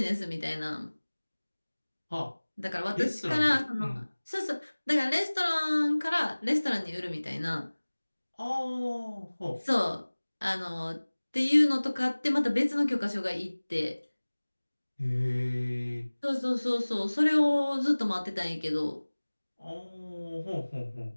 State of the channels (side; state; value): both; inverted; correlation -1.00